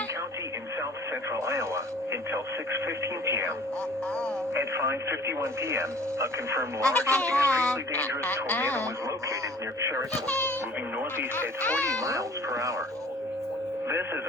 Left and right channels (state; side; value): normal; both; correlation 0.50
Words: County in south central Iowa, until 6:15 p.m. At 5:51 p.m., a confirmed large and extremely dangerous tornado was located near Cherokee, moving northeast at 40 miles per hour. This is